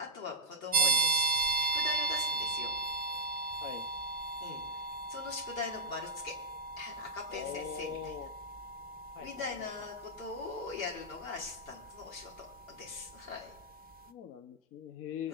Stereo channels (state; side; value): normal; both; correlation -0.02